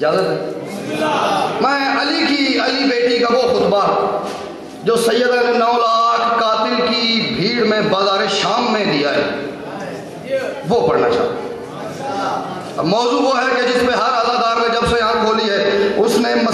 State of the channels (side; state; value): both; identical; correlation 1.00